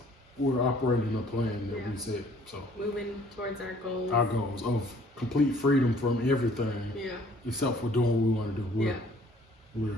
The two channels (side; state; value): both; normal; correlation 0.57